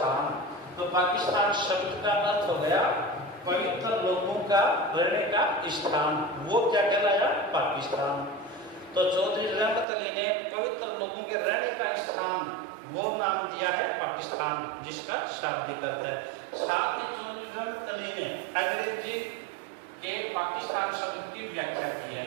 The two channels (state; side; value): drops out; left; at 9.9 s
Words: तो पाकिस्तान शब्द का अर्थ हो गया पवित्र लोगों का रहने का स्थान, वो क्या कहलाया पाकिस्तान। तो चौधरी रहमत अली ने पवित्र लोगों के रहने का स्थान वो नाम दिया है पाकिस्तान, जिसका शाब्दिक अर्थ है। साथ ही चौधरी रहमत अली ने अंग्रेजी के पाकिस्तान शब्द की व्याख्या की है।